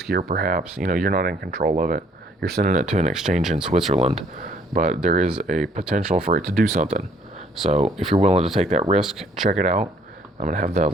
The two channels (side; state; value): both; normal; correlation 0.62